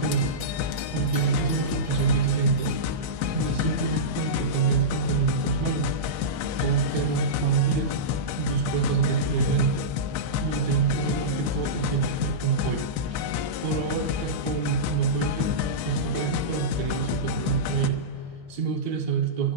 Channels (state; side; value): late; left; 1.6 ms